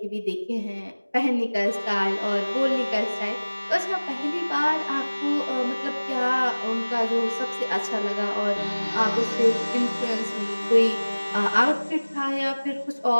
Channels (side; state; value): both; inverted; correlation -1.00